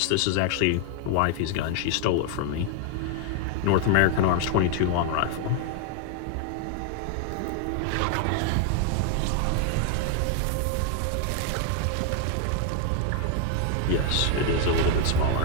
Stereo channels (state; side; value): different; both; correlation 0.00